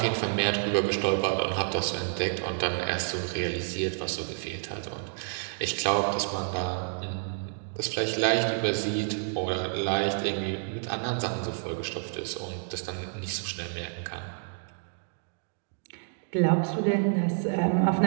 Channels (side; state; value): left; silent; digital silence